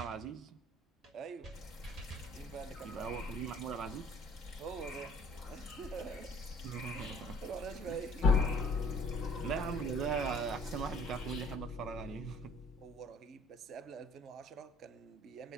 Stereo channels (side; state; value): both; normal; correlation 0.55